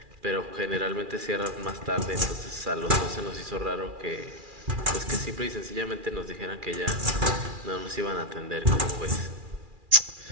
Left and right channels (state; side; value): late; left; 2.4 ms